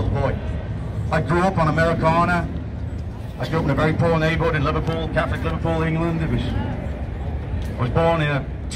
boy. I grew up on Americana. I grew up in a very poor neighborhood in Liverpool, Catholic Liverpool, England. I was born in a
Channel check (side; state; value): both; identical; correlation 1.00